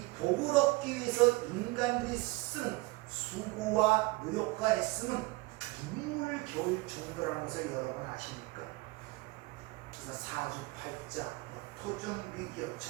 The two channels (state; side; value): quieter; left; 22.7 dB